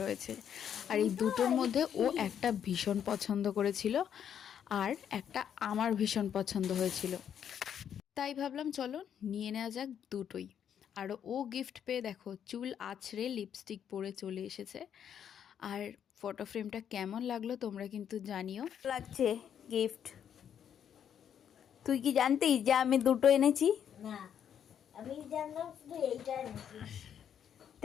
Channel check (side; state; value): right; quieter; 8.8 dB